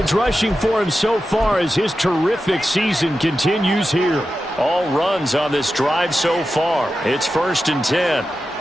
rushing for him so far as his terrific season continues here. All runs on this drive so far. It's 1st and 10.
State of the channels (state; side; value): normal; both; correlation 0.91